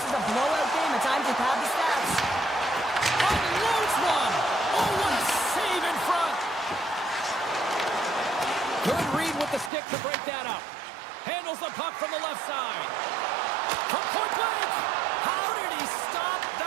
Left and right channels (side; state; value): left; drops out; at 9.7 s